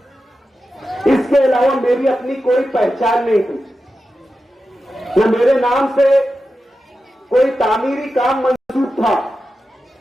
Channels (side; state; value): both; normal; correlation 0.91